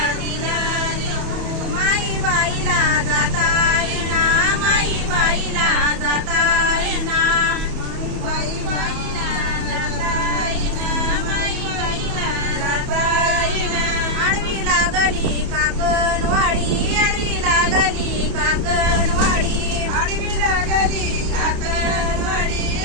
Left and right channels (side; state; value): left; late; 31 ms